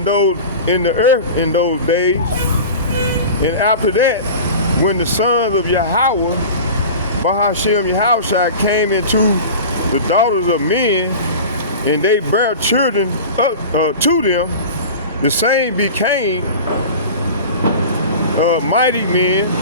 the earth in those days. And after that, when the sons of Yahweh, Bahashem Yahushua, came into the daughters of men, and they bare children to them, the same became mighty men,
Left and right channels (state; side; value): inverted; both; correlation -0.35